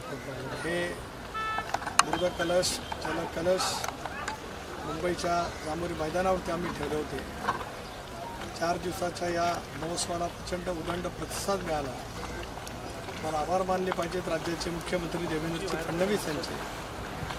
हे मृदकलश, जलकलश मुंबईच्या जांभोरी मैदानावरती आम्ही ठेवले होते। 4 दिवसाच्या या महोत्सवाला प्रचंड उदंड प्रतिसाद मिळाला। मला आभार मानले पाहिजेत राज्याचे मुख्यमंत्री देवेंद्र फडणवीस यांचे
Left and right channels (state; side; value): identical; both; correlation 1.00